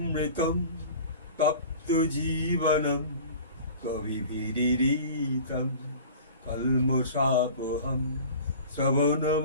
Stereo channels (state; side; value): inverted; both; correlation -0.41